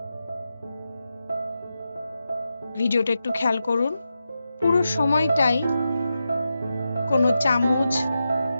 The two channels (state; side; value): inverted; both; correlation -0.89